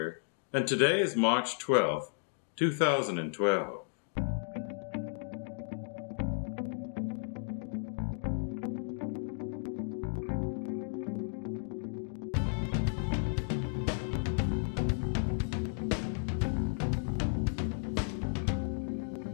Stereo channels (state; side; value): silent; right; digital silence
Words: And today is March 12th, 2012.